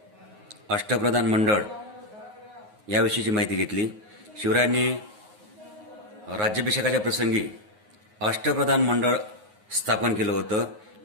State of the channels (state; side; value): late; left; 9.5 ms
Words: अष्टप्रधान मंडळ याविषयीची माहिती घेतली। शिवरायांनी राज्याभिषेकाच्या प्रसंगी अष्टप्रधान मंडळ स्थापन केलं होतं,